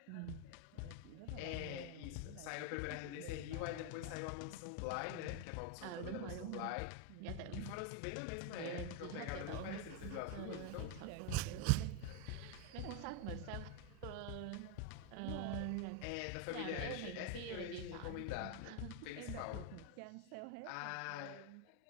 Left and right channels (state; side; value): different; both; correlation 0.01